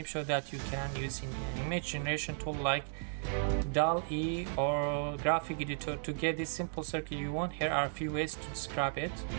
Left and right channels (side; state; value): left; silent; digital silence